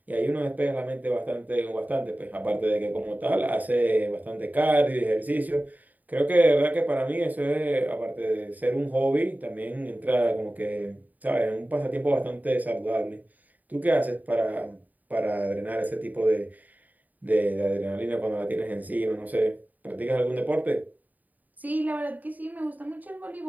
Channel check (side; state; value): left; late; 0.081 ms